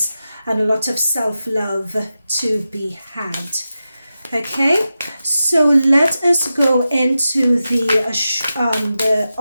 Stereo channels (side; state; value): both; inverted; correlation -0.91